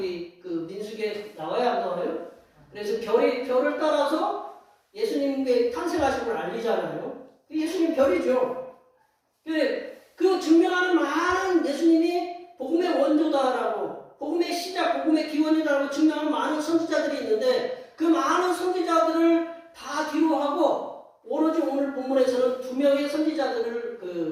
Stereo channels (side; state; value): both; identical; correlation 1.00